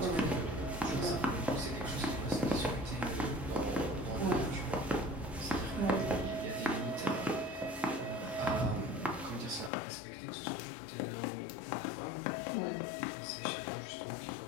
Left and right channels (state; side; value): drops out; right; at 9.7 s